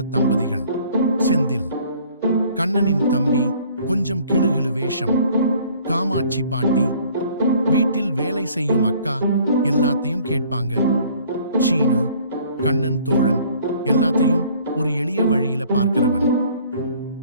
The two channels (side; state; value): both; inverted; correlation -0.56